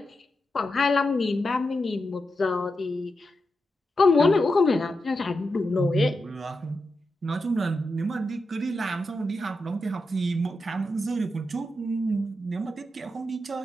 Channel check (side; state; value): both; normal; correlation 0.88